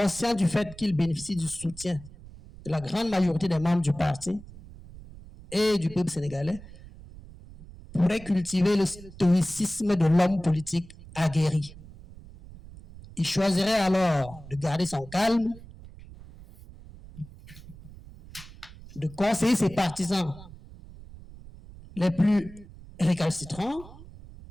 du fait qu'il bénéficie du soutien de la grande majorité des membres du parti et du peuple sénégalais, pourrait cultiver le stoïcisme de l'homme politique aguerri. Il choisirait alors de garder son calme, de conseiller ses partisans les plus récalcitrants,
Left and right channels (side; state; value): right; noise; rumble, 18 dB below the sound